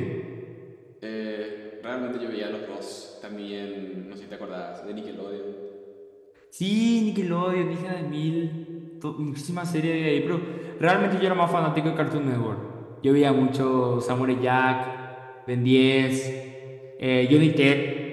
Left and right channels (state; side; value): identical; both; correlation 1.00